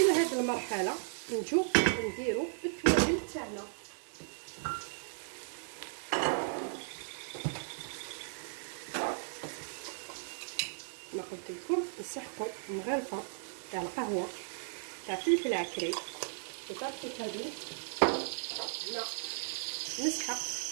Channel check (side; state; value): left; silent; digital silence